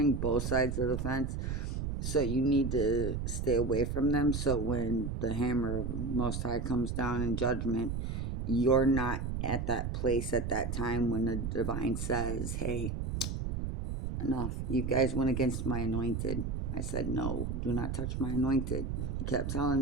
both sides of the fence. So you need to stay away from them. So when the hammer of Most High comes down in judgment, you're not at that place at that time when the divine says, hey, enough. You guys went against my anointed. I said, no, do not touch my anointed. He kept telling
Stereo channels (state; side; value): noise; right; rumble, 3 dB below the sound